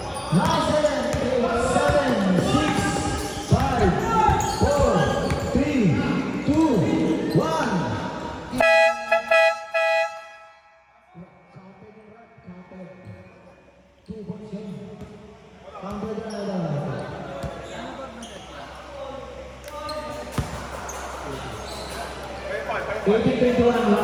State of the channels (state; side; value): identical; both; correlation 1.00